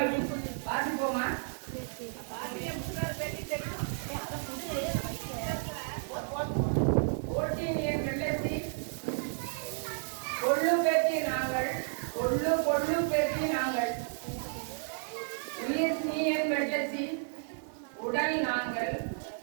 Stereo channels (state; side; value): silent; left; 56 dB below the other